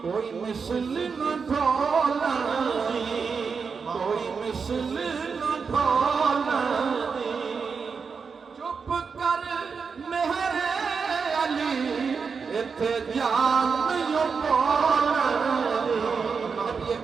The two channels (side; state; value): left; quieter; 5.5 dB